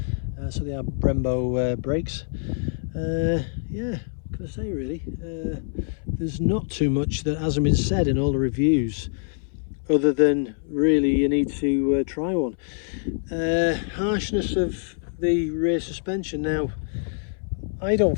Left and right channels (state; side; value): silent; right; 62 dB below the other